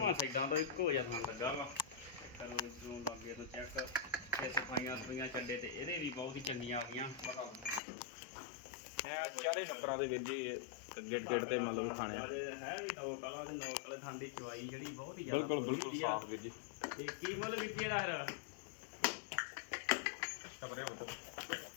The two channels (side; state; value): right; drops out; at 7.8 s